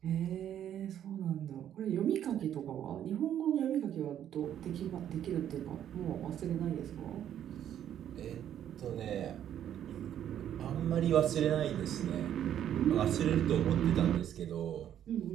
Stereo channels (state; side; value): quieter; left; 10.4 dB